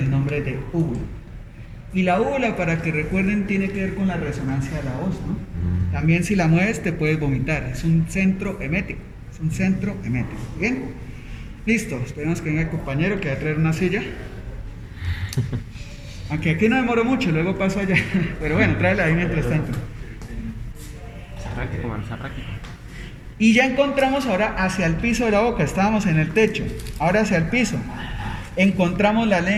nombre de úvula. Y la úvula, para que recuerden, tiene que ver con la resonancia de la voz, ¿no? También si la mueves te puedes vomitar. Es un centro emético. Es un centro emético. ¿Bien? Listo. Esperemos que venga el compañero que va a traer una silla. Aunque aquí no demoro mucho, luego paso allá. Pero bueno, tráela ahí mientras tanto. Está práctico, mano, está práctico. Y ya encontramos ahora hacia el piso de la boca, estábamos en el techo, ahora hacia el piso. Encontramos la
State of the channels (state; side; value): identical; both; correlation 1.00